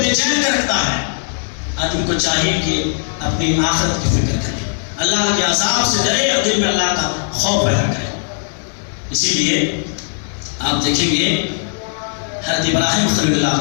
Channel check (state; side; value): silent; right; digital silence